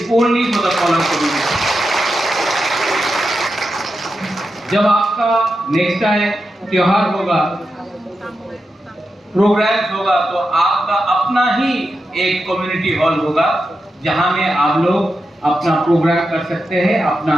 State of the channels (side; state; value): both; normal; correlation 0.89